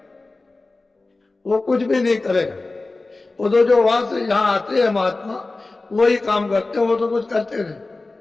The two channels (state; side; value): quieter; right; 3.3 dB